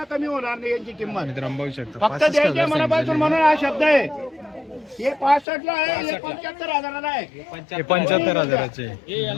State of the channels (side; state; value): right; drops out; at 5.5 s